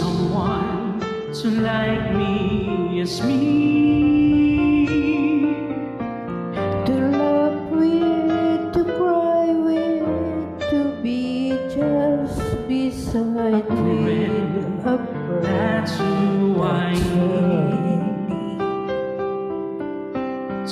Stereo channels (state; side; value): identical; both; correlation 1.00